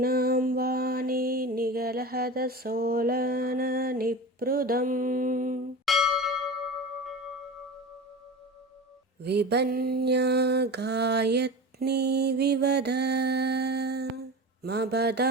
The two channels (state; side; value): normal; both; correlation 0.30